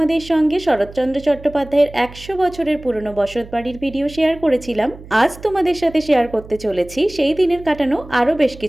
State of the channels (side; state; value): right; noise; hum, 18 dB below the sound